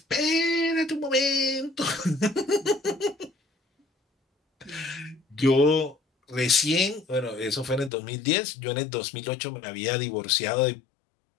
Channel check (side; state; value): right; drops out; at 7.9 s